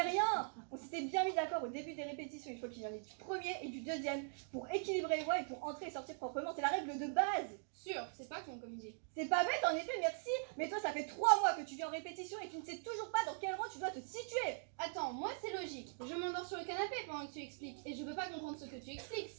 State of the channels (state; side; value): silent; left; digital silence